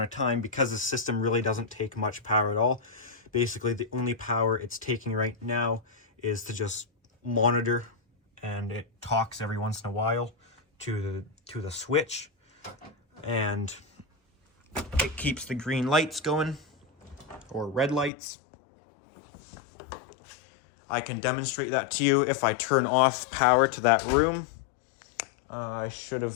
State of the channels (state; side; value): drops out; right; at 18.1 s